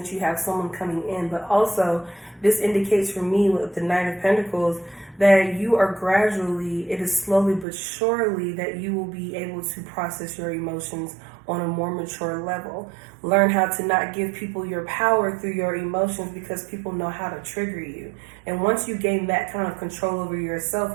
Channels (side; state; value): left; drops out; at 7.7 s